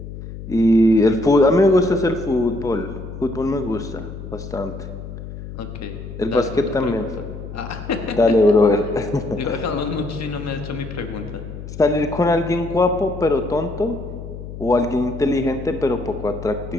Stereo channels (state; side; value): noise; left; hum, 11 dB below the sound